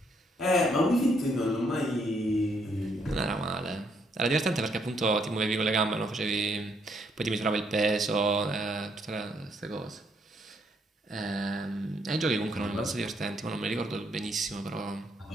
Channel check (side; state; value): both; normal; correlation 0.71